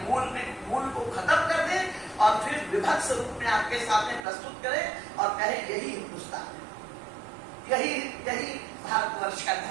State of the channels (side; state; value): left; drops out; at 4.2 s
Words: मूल को खत्म कर दे और फिर विभत्स रूप में आपके सामने प्रस्तुत करें और कहे यही हिंदुस्तान है, यही भारतवर्ष का